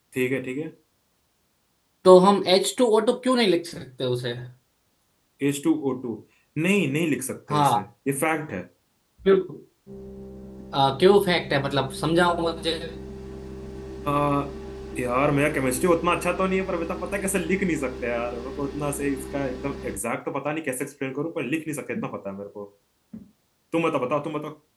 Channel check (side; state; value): both; identical; correlation 1.00